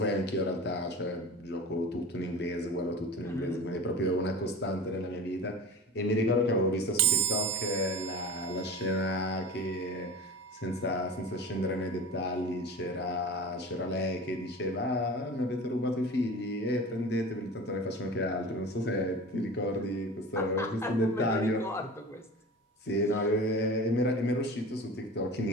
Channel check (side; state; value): both; normal; correlation 0.34